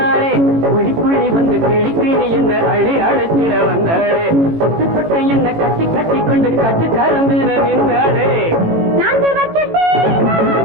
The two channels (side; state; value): left; late; 18 ms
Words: புள்ளி புள்ளி வந்து கிளி கிளி என்ன அள்ளி அழைச்சிட வந்தாளே தொட்டு தொட்டு என்ன கட்டி கட்டி கொண்டு கட்டி கருந்தின நின்னாளே